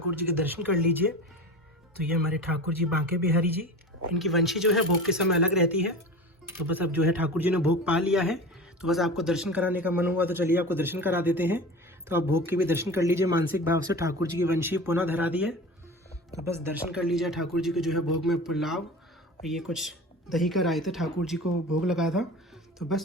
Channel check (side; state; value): both; normal; correlation 0.34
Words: जी के दर्शन कर लीजिए। तो ये हमारे ठाकुर जी बांके बिहारी जी, इनकी वंशी जो है भोग के समय अलग रहती है। तो बस अब जो है ठाकुर जी ने भोग पा लिया है, तो बस आपको दर्शन कराने का मन हुआ तो चलिए आपको दर्शन करा देते हैं। तो आप भोग के भी दर्शन कर लीजिए मानसिक भाव से। ठाकुर जी की वंशी पुनः धरा दी है, तो बस दर्शन कर लीजिए ठाकुर जी के जो है भोग में पुलाव और ये कुछ दही का रायता ठाकुर जी को भोग लगाया था। तो